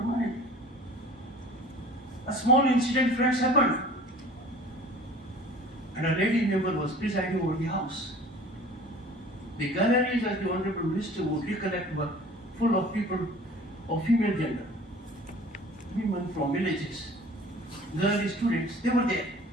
A small incident, friends, happened. And a lady member was presiding over the house. The galleries, as the Honorable Minister would recollect, were full of people of female gender. Women from villages, girl students, they were there.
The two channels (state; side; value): normal; both; correlation 0.46